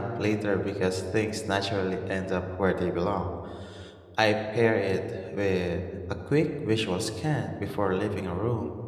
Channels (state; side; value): identical; both; correlation 1.00